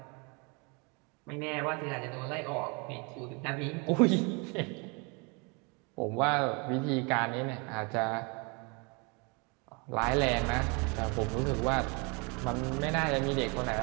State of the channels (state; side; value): quieter; left; 31.3 dB